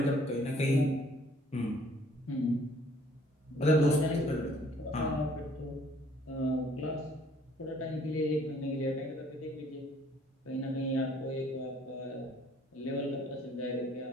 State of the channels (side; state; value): both; normal; correlation 0.60